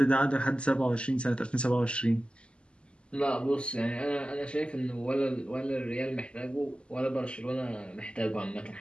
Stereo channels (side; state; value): right; late; 0.053 ms